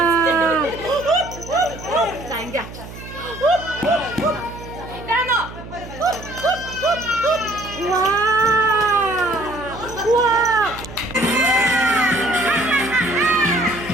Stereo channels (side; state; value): right; noise; hum, 14 dB below the sound